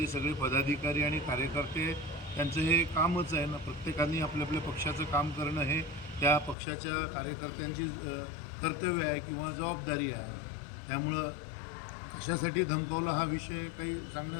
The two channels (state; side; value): drops out; right; at 6.6 s